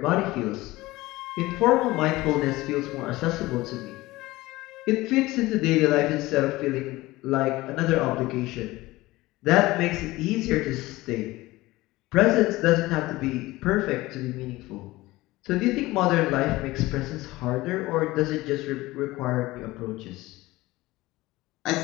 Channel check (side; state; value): right; quieter; 19.2 dB